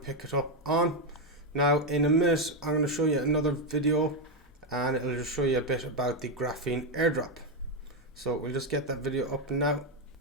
it up on. Now in a minute I'm going to show you another video, and it'll just show you a bit about the Graphene airdrop. So we'll just get that video up now.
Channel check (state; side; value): normal; both; correlation 0.05